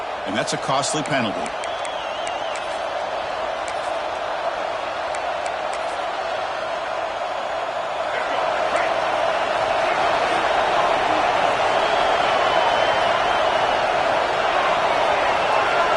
and that's a costly penalty.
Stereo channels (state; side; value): identical; both; correlation 1.00